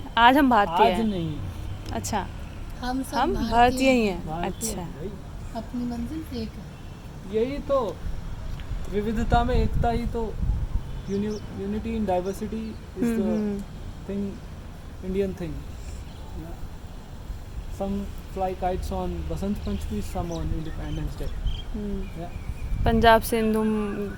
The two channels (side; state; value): both; identical; correlation 1.00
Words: भारतीय आज हैं। नहीं, अच्छा, हम सब हम भारतीय ही हैं। भारतीय अच्छा, हैं भाई। अपनी मंजिल एक है। यही तो विविधता में एकता ही तो, unity in diversity is the thing, Indian thing. Some fly kites on Basant Panchami, some on Independence Day. Punjab Sindhu